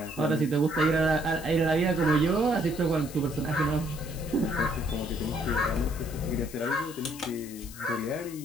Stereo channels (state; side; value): noise; left; hiss, 16 dB below the sound